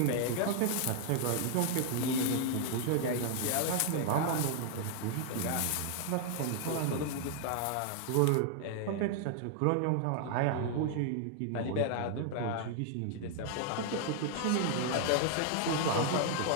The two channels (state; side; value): different; both; correlation 0.00